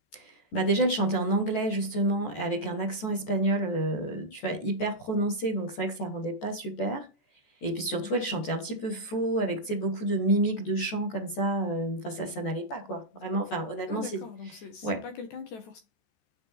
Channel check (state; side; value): late; right; 14 ms